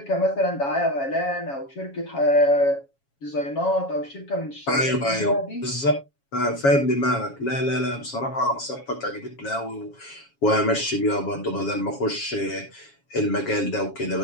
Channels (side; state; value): right; late; 7.3 ms